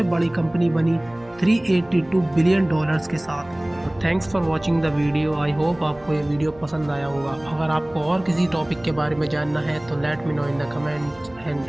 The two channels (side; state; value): right; noise; hum, 26 dB below the sound